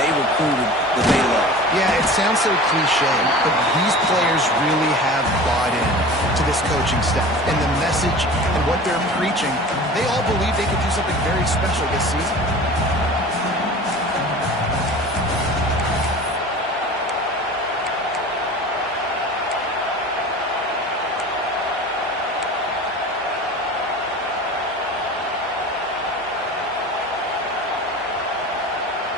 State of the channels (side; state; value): both; normal; correlation 0.38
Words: recruited, that they love. Yeah, it sounds so cliche, but these players really have bought in to this coaching staff and the message and what they're preaching. They all believe they could do something very special this season.